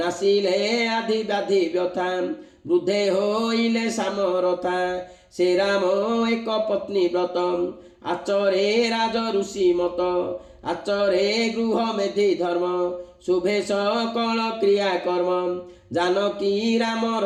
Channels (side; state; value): both; identical; correlation 1.00